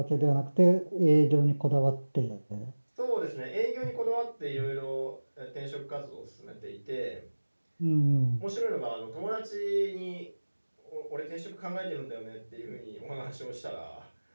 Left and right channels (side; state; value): both; inverted; correlation -1.00